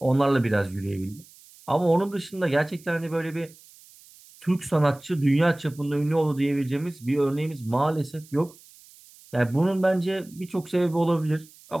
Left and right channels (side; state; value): right; noise; hiss, 24 dB below the sound